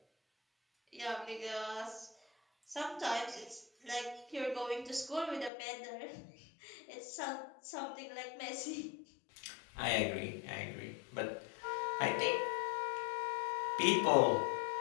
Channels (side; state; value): right; drops out; at 5.5 s